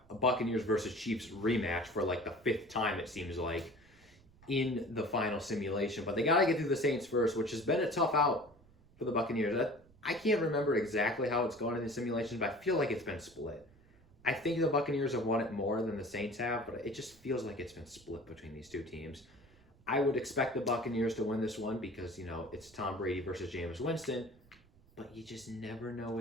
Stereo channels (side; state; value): right; noise; rumble, 27 dB below the sound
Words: a Buccaneers versus Chiefs rematch for like the 5th time, it seems like, in the final simulation. But they got to get through the Saints first, which has been a tough out for the Buccaneers. I can't remember exactly how it's gone in the simulations, but I feel like it's been split. I think the Buccaneers have won it more than the Saints have, but it just feels like it's been split between these two teams. I would expect the Buccaneers to win this one because, it's Tom Brady versus Jameis Winston, but you just never know